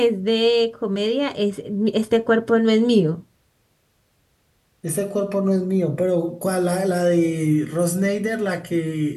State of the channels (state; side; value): identical; both; correlation 1.00